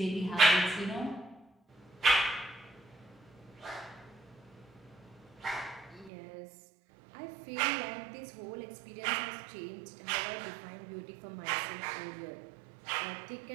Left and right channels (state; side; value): drops out; left; at 6.1 s